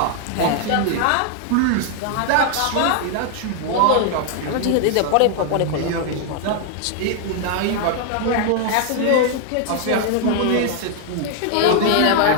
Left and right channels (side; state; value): both; different; correlation 0.00